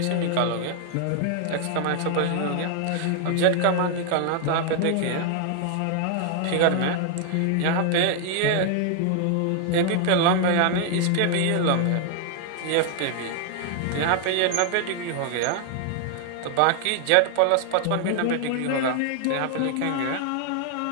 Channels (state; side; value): different; both; correlation 0.00